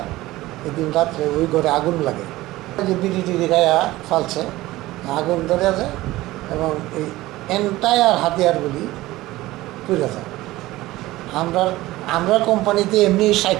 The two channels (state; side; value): quieter; left; 17.7 dB